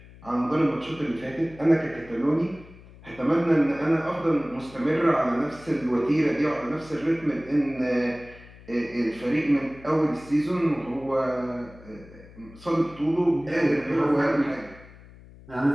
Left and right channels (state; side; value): noise; left; hum, 21 dB below the sound